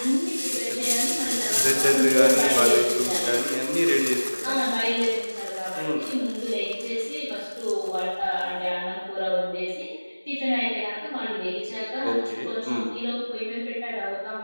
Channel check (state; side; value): inverted; both; correlation -1.00